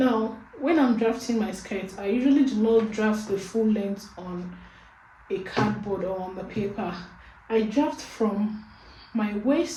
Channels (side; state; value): both; identical; correlation 1.00